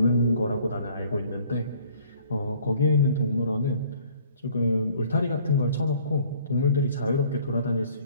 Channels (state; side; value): inverted; both; correlation -0.56